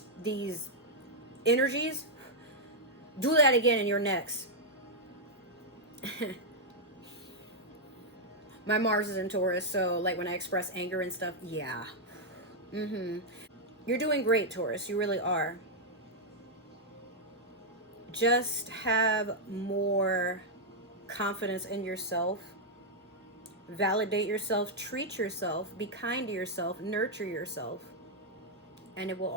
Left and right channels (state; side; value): normal; both; correlation -0.04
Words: these energies do that again in your next. My Mars is in Taurus, so like when I express anger and stuff, yeah. You're doing great, Taurus. You really are. Just have more confidence in yourself. Validate yourself, treat yourself, be kind to yourself, nurture yourself, and it will